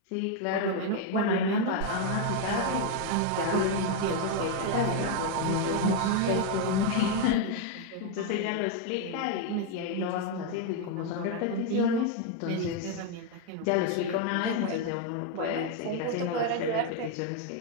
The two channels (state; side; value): different; both; correlation 0.01